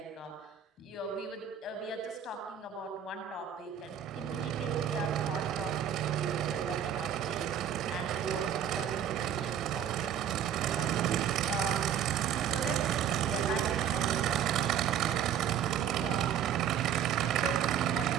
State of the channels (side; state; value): left; quieter; 9.1 dB